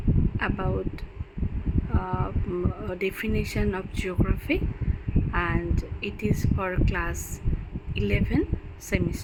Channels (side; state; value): both; identical; correlation 1.00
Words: about definition of geography, and it is for class 11